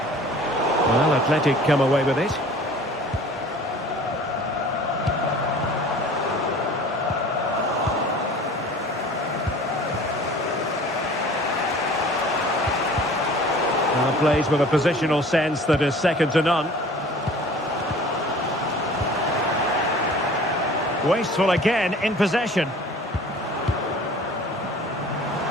Well, Athletic come away with it. Plays with a positional sense that is second to none. Wasteful again in possession.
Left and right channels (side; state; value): both; normal; correlation 0.46